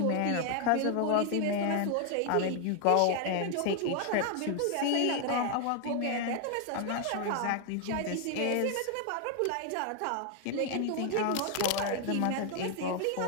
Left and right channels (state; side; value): different; both; correlation 0.00